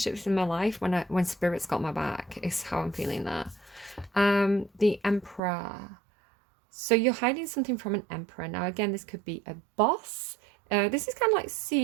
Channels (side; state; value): left; drops out; at 5.4 s